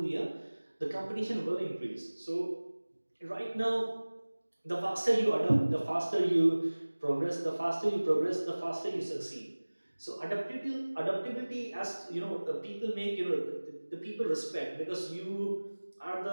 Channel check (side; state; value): both; inverted; correlation -1.00